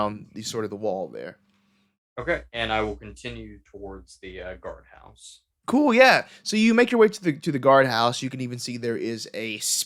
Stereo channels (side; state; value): both; identical; correlation 1.00